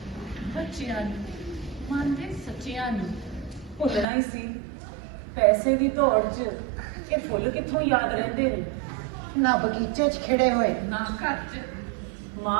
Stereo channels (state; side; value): drops out; left; at 4.0 s